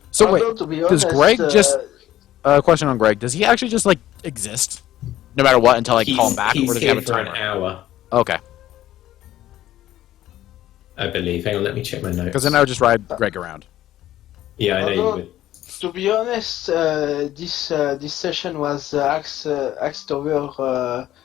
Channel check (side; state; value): right; quieter; 13.5 dB